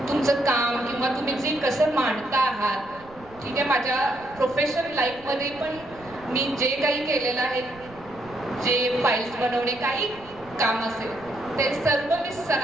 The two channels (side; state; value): right; noise; rumble, 22 dB below the sound